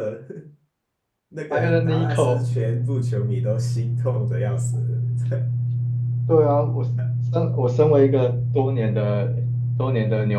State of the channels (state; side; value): identical; both; correlation 1.00